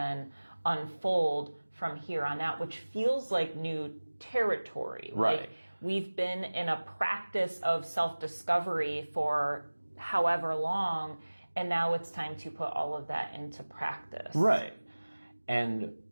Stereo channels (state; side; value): inverted; both; correlation -1.00